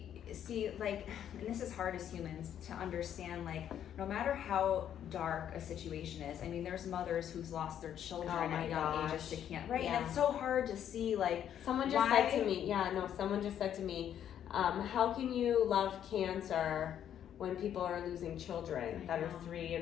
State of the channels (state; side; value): quieter; right; 9.9 dB